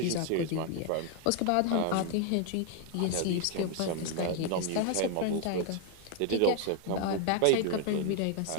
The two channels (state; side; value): different; both; correlation 0.01